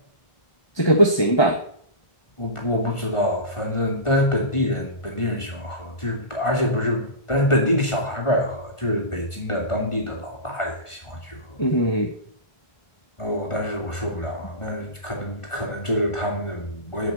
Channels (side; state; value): right; late; 1.4 ms